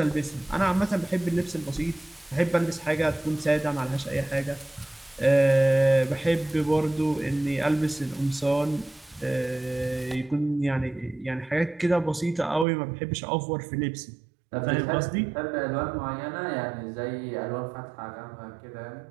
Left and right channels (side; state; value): left; drops out; at 12.7 s